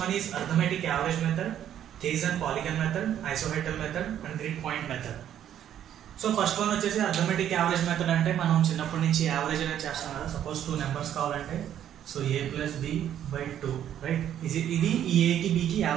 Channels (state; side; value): quieter; left; 10.5 dB